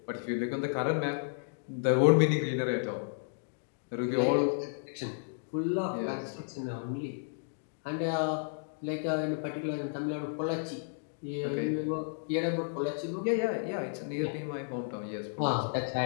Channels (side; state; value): right; silent; digital silence